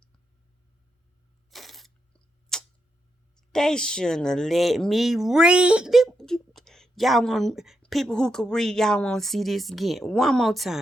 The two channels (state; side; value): normal; both; correlation 0.83